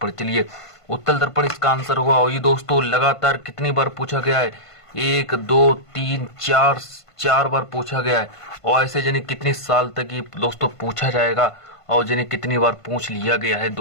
चलिए उत्तल दर्पण इसका आंसर होगा। और ये दोस्तों लगातार कितनी बार पूछा गया है, 1 2 3 4 बार पूछा गया है। और ऐसे जाने कितने साल तक ये दोस्तों पूछा जाएगा और जाने कितनी बार पूछ लिया गया है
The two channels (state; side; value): late; right; 1.5 ms